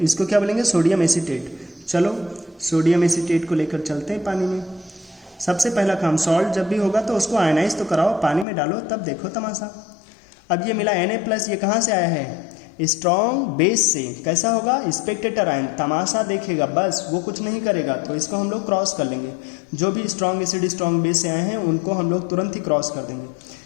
इसको क्या बोलेंगे? Sodium acetate. चलो सोडियम एसीटेट को लेकर चलते हैं पानी में। सबसे पहला काम, सॉल्ट जब भी होगा तो उसको आयनाइज तो कराओ, पानी में डालो, तब देखो तमाशा। अब ये मिला Na+, ये कहाँ से आया है? स्ट्रॉन्ग बेस से कैसा होगा, स्पेक्टेटर आयन तमाशा देखेगा बस, वो कुछ नहीं करेगा, तो इसको हम लोग क्रॉस कर लेंगे। जो भी स्ट्रॉन्ग एसिड स्ट्रॉन्ग बेस से आए हैं उनको हम लोग तुरंत ही क्रॉस कर देंगे।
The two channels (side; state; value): right; drops out; at 8.5 s